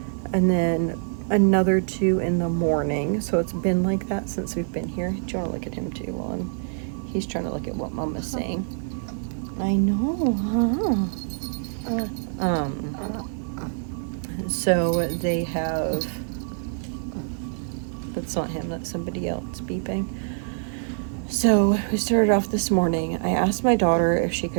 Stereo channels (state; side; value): silent; left; 62 dB below the other